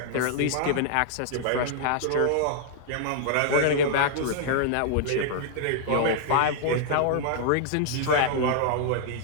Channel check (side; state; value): both; different; correlation -0.01